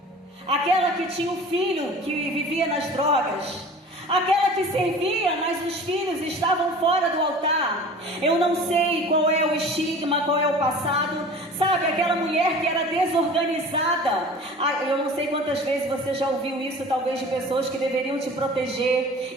aquela que tinha um filho que vivia nas drogas, aquela que servia, mas os filhos estavam fora do altar. Eu não sei qual é o estigma, qual é o passado. Sabe, aquela mulher que era desorganizada. Eu não sei quantas vezes você já ouviu isso, talvez de pessoas que deveriam te proteger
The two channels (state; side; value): normal; both; correlation 0.41